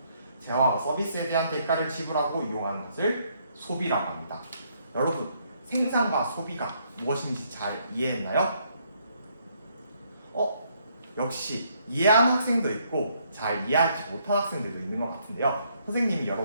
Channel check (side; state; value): both; inverted; correlation -0.70